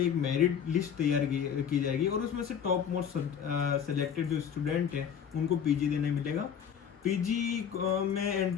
एक मेरिट लिस्ट तैयार की जाएगी और उसमें से टॉप मोस्ट सेलेक्टेड जो स्टूडेंट हैं उनको पीजी देने मिलेगा। पीजी में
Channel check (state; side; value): quieter; right; 8.0 dB